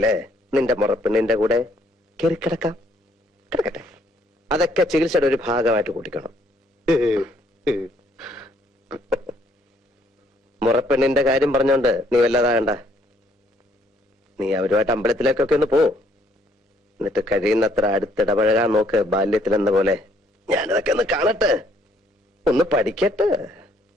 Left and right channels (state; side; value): normal; both; correlation 0.65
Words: നിന്റെ മുറപ്പ് നിന്റെ കൂടെ കയറി കിടക്കാം. കിടക്കട്ടെ. അതൊക്കെ ചികിത്സയുടെ ഒരു ഭാഗമായിട്ട് കൂട്ടിക്കണം. മുറപ്പെണ്ണിന്റെ കാര്യം പറഞ്ഞോണ്ട് നീ വല്ലതാകണ്ട. നീ അവരുമായിട്ട് അമ്പലത്തിലേക്കൊക്കെ ഒന്ന് പോ. എന്നിട്ട് കഴിയുന്നത്ര അടുത്തിടപഴകാൻ നോക്ക്. ബാല്യത്തിലെന്ന പോലെ ഞാനതൊക്കെ ഒന്ന് കാണട്ടെ, ഒന്ന് പഠിക്കട്ടെ.